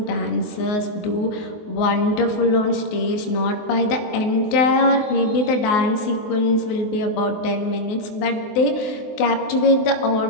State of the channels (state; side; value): late; right; 24 ms